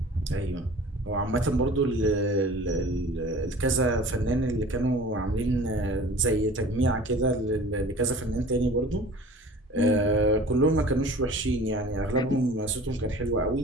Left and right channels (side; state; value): both; normal; correlation 0.43